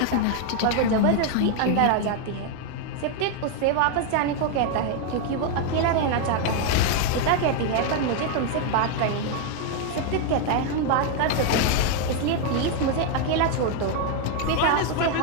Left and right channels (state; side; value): different; both; correlation 0.01